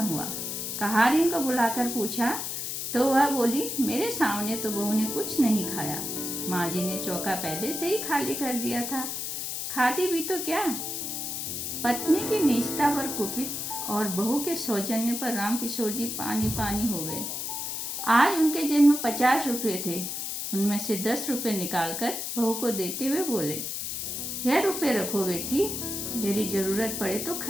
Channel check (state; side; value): noise; left; hiss, 4 dB below the sound